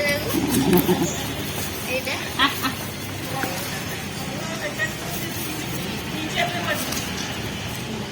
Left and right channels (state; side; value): identical; both; correlation 1.00